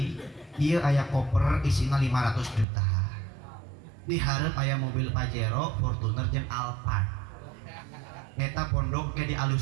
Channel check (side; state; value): left; drops out; at 2.7 s